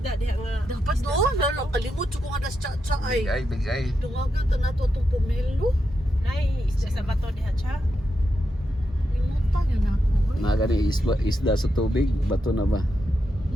diha nga. Dapat doon, lalo kalimot ko nga das chacha Big ay. eye, big eye. Dungagan ta nato itong pomelo. Nay, isda sa bato diha cha. Limutan yun ako. Nagani isda sa tubig, bato na ba?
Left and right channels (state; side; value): normal; both; correlation 0.85